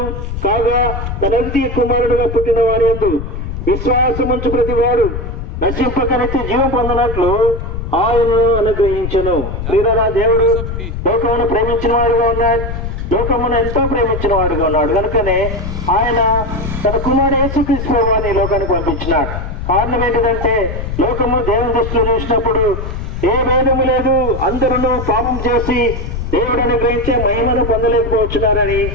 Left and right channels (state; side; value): noise; left; rumble, 6 dB below the sound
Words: కాగా తన అద్వితీయ కుమారుడుగా పుట్టిన వారి యందు విశ్వాసముంచు ప్రతి వాడు నశింపక నిత్య జీవం పొందనట్లు ఆయనను అనుగ్రహించెను. వీరరా, దేవుడు లోకమును ప్రేమించిన వాడుగా ఉన్నాడు, లోకమును ఎంతో ప్రేమించిన వాడుగా ఉన్నాడు. కనుకనే ఆయన తన కుమారుడు యేసుక్రీస్తు ప్రభువుని లోకానికి పంపించినాడు. కారణం ఏంటిదంటే, లోకము దేవుని దృష్టిలో చూసినప్పుడు ఏ భేదము లేదు, అందరూ పాపం చేసి దేవుడు అనుగ్రహించే మహిమను పొందలేకపోతున్నారని